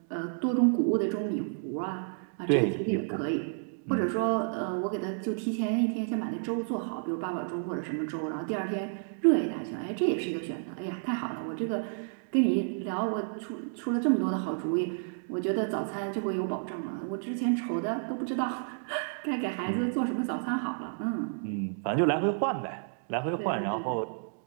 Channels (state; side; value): silent; left; digital silence